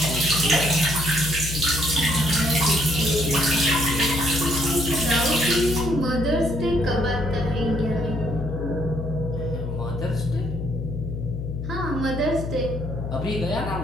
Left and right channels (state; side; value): noise; left; hum, 5 dB below the sound